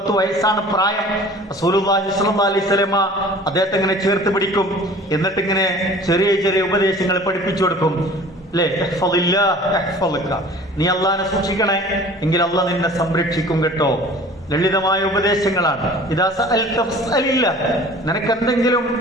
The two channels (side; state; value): both; normal; correlation 0.46